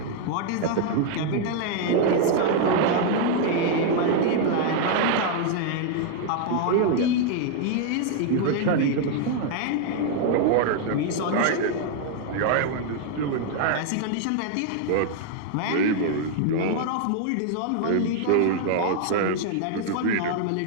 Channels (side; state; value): both; different; correlation 0.00